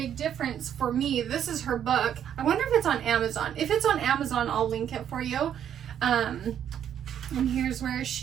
difference for me. This is her book. I wonder if it's on Amazon. If it's on Amazon, I'll link it for you. And here's where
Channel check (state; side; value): quieter; left; 9.5 dB